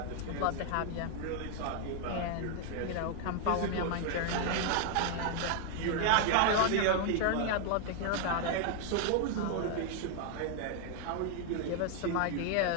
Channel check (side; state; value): both; different; correlation 0.00